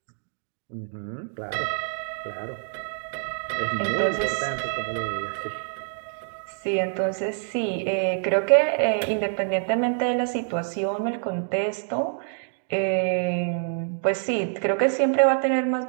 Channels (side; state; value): left; silent; digital silence